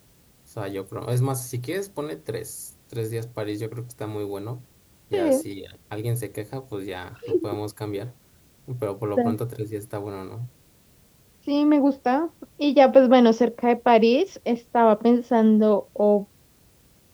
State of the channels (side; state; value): both; identical; correlation 1.00